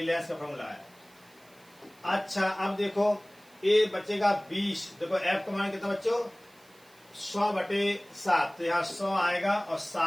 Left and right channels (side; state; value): right; noise; hiss, 28 dB below the sound